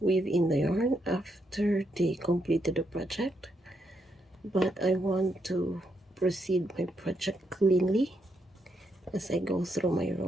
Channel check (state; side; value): normal; both; correlation 0.79